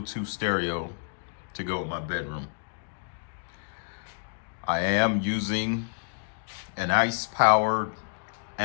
stereo to go in my bedroom. I am using an ICE-powered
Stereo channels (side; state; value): right; silent; digital silence